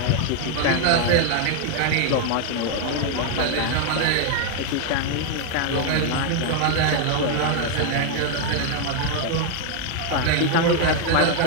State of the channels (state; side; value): different; both; correlation 0.00